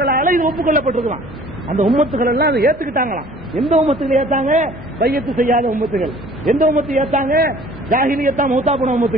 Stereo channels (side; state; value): both; normal; correlation 0.51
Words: இது ஒப்புக்கொள்ளப்பட்டிருக்கலாம். அந்த உம்மத்துகள் எல்லாம் அதை ஏத்துக்கிட்டாங்களாம். எந்த உம்மத்துகள் ஏத்தாங்க? பையத்து செய்யாத உம்மத்துகள். எந்த உம்மத்து ஏத்தாங்க? ஜாஹிலியத்தா மௌத்தா போன